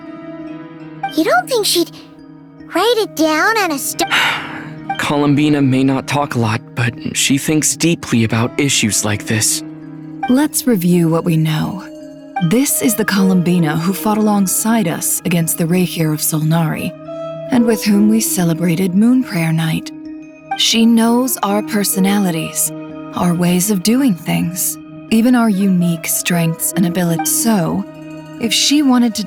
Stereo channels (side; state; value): both; identical; correlation 1.00